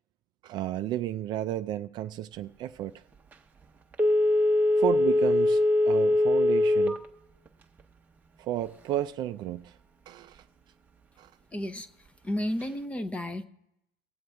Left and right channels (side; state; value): both; normal; correlation 0.82